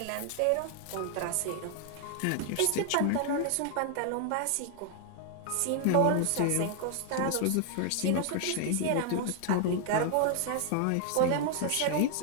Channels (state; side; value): different; both; correlation 0.00